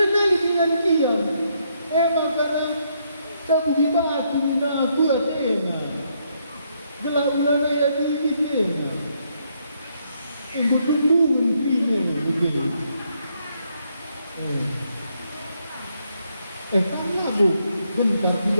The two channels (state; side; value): inverted; both; correlation -0.74